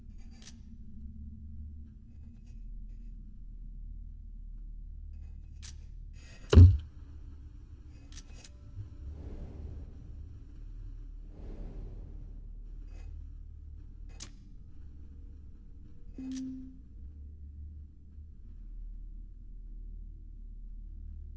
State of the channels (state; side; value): identical; both; correlation 1.00